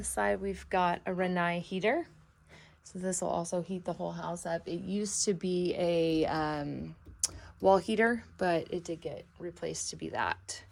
side. We've got a Renai heater. So this will also heat the whole house up. It used to be a wall heater, but it did get replaced to be that.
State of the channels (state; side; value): identical; both; correlation 1.00